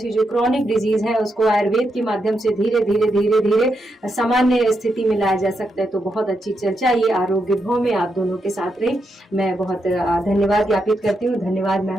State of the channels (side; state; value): both; normal; correlation 0.83